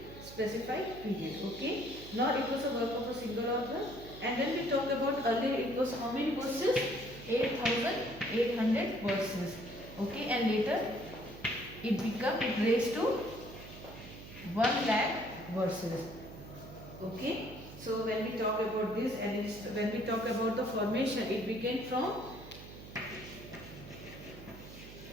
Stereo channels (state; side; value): noise; right; hum, 15 dB below the sound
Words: period. Okay, nor it was a work of a single author. And when we talk about earlier, it was how many verses? 8,800 verses. Okay, and later it raised to 1 lakh verses. Okay, so when we talk about this, and when we talk about the formation, it began from